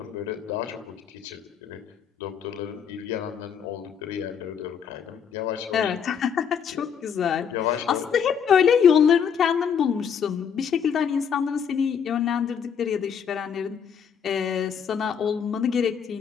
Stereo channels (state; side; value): quieter; right; 7.4 dB